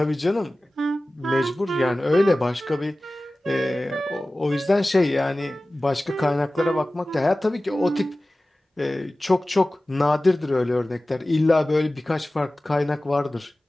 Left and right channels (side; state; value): both; normal; correlation 0.97